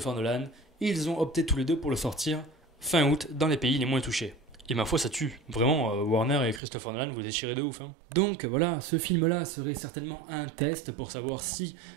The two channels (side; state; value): left; drops out; at 6.6 s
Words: Nolan. Ils ont opté tous les deux pour le sortir fin août dans les pays les moins touchés. Et ma foi, ça tue. Vraiment, Warner et Christopher Nolan, vous déchirez de ouf. Donc voilà, ce film-là serait certainement un test pour savoir si